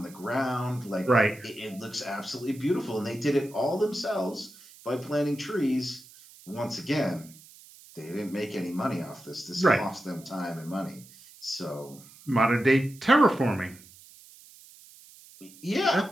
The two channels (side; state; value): right; noise; hiss, 22 dB below the sound